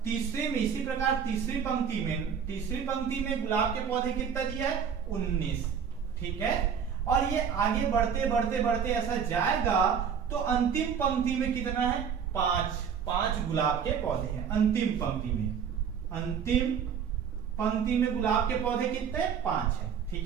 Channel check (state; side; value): quieter; left; 7.3 dB